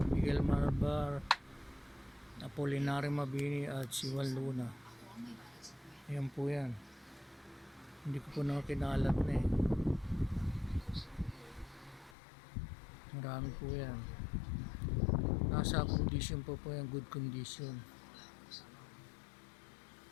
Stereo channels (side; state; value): right; drops out; at 12.2 s